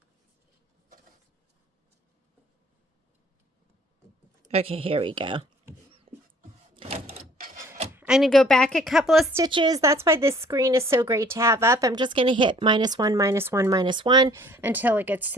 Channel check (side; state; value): both; normal; correlation 0.56